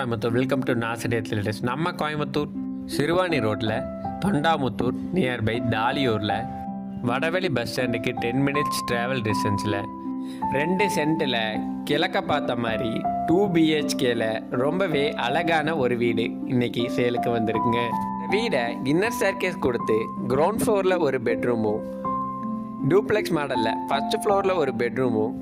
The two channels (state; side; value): identical; both; correlation 1.00